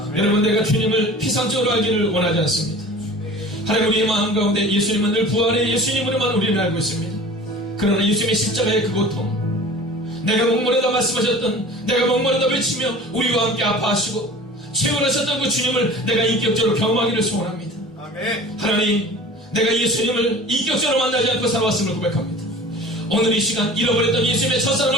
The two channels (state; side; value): normal; both; correlation 0.42